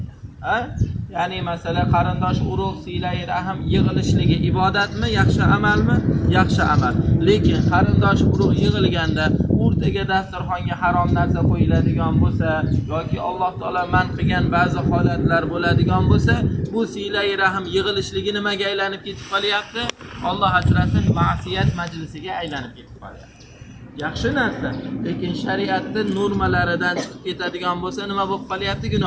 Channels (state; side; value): identical; both; correlation 1.00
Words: Ya'ni masala qarindosh urug' siylay rahim yig'ilishligi ibodatmi, yaxshi amalmi? Yaxshi amal. Lekin qarindosh urug' yig'ilganda o'rtaga dasturxonga harom narsa qo'yiladigan bo'lsa yoki Alloh taolo man qilgan ba'zi holatlar bo'ladigan bo'lsa, bu siylay rahim yig'ilishligi nimaga aylanib ketib qolyapti? Alloh asrasin, ma'siyat majlisiga aylanib ketib qolyapti. Yaxshi narsa, lekin shariatning normalaridan chiqib ketadigan bo'lsa nima bo'lib qolyapti?